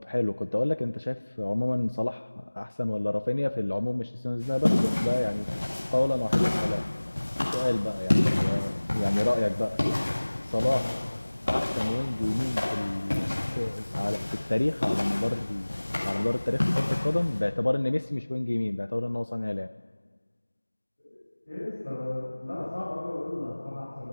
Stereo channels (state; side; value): inverted; both; correlation -1.00